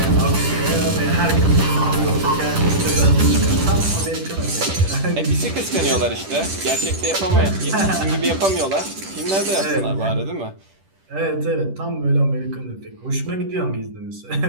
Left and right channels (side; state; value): left; late; 10 ms